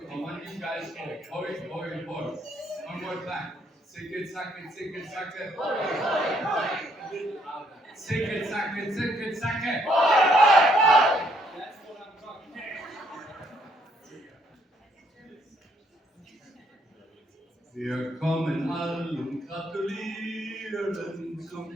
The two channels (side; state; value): both; normal; correlation 0.69